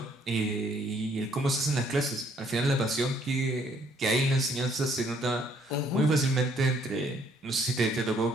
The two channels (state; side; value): normal; both; correlation 0.65